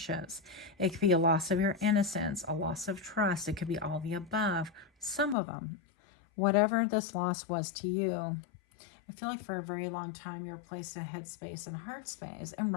It could be a loss of your innocence, a loss of trust. It could be all the above, some of them. Whatever this loss was to you, I feel like for a very long time you were placed in headspace and heart space, and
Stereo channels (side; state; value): right; drops out; at 5.4 s